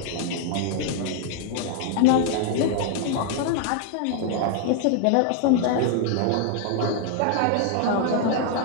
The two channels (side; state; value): both; different; correlation 0.00